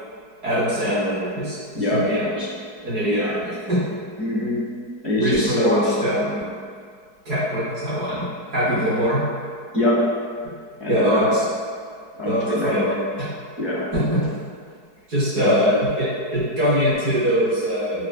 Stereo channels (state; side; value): late; left; 4.7 ms